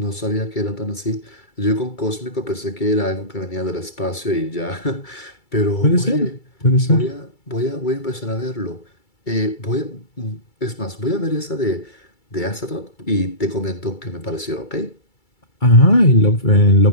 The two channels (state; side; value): late; right; 2.3 ms